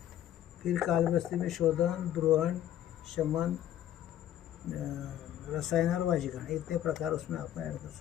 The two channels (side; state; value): right; quieter; 11.6 dB